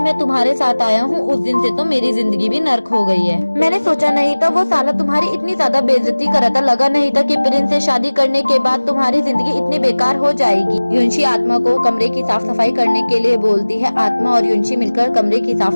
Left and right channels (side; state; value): both; inverted; correlation -1.00